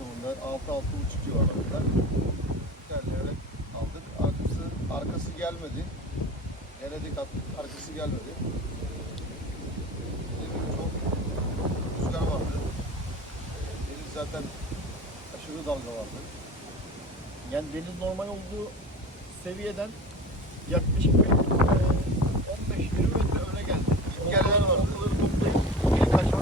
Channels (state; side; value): normal; both; correlation 0.33